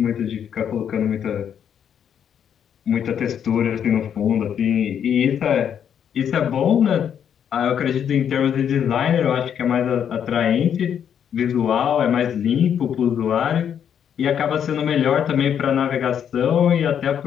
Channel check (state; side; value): quieter; right; 8.6 dB